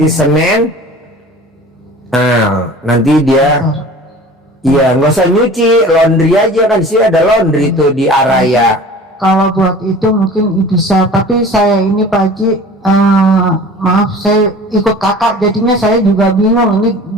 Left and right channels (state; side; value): normal; both; correlation 0.42